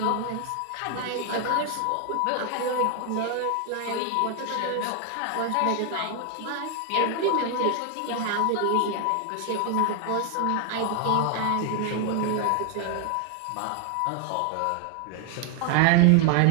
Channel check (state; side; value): different; both; correlation 0.00